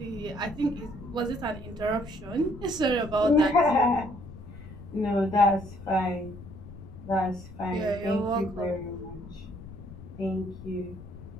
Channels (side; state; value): left; noise; rumble, 14 dB below the sound